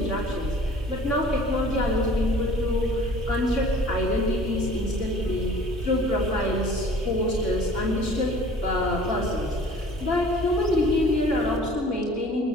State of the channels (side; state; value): both; normal; correlation 0.49